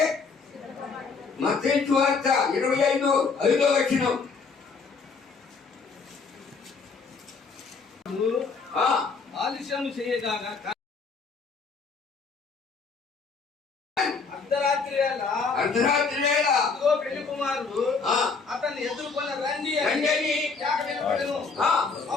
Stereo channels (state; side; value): quieter; right; 4.8 dB